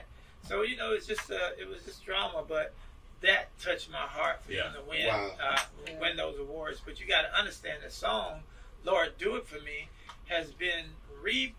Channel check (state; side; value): identical; both; correlation 1.00